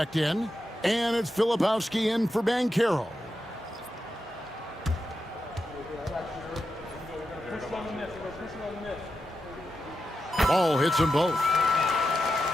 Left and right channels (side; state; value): both; normal; correlation 0.88